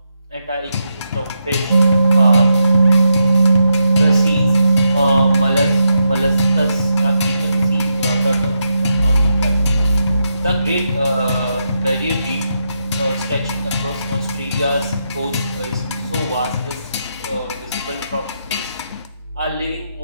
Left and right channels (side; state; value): both; inverted; correlation -0.83